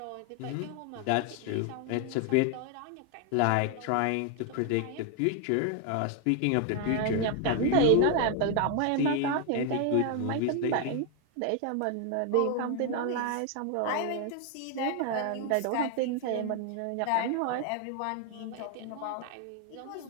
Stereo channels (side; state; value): both; different; correlation 0.00